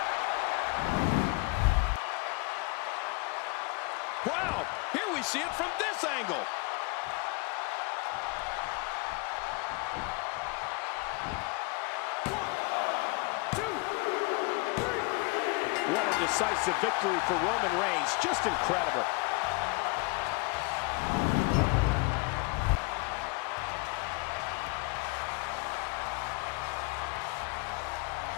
Wow, here we see it from this angle. What a decisive victory for Roman Reigns. Just incredible.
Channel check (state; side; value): quieter; right; 28.4 dB